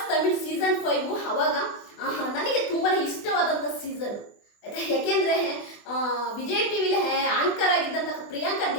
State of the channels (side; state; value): right; late; 24 ms